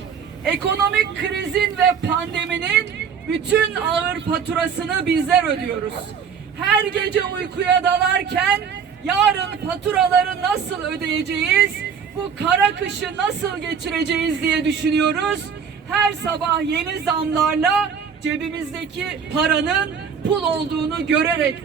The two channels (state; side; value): quieter; left; 6.8 dB